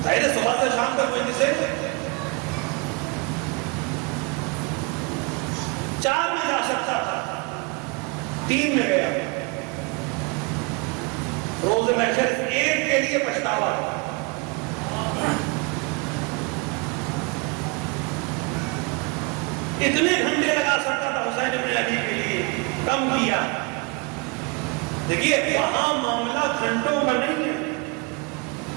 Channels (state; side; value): quieter; left; 28.8 dB